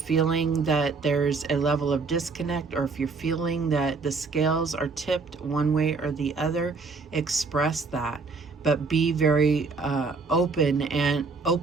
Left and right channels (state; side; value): quieter; left; 4.4 dB